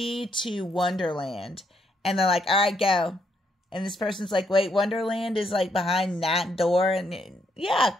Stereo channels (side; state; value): both; normal; correlation 0.75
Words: to Wonderland. And they're like, all right, go. And this person's like, wait, Wonderland is like behind that door? And yeah,